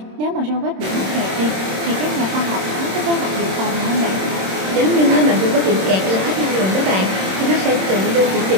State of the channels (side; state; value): left; late; 26 ms